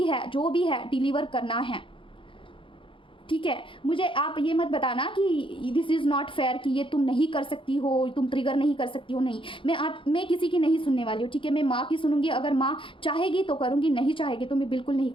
है, जो भी है, डिलीवर करना है। ठीक है? मुझे आप ये मत बताना कि दिस इज़ नॉट फेयर, कि ये तुम नहीं कर सकती हो, तुम ट्रिगर नहीं कर सकती हो। नहीं, मैं किसी की नहीं सुनने वाली हूँ। ठीक है? मैं माँ की सुनूंगी। अगर माँ चाहेगी तो करूँगी, नहीं चाहेगी तो मैं बिल्कुल नहीं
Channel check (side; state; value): right; late; 0.25 ms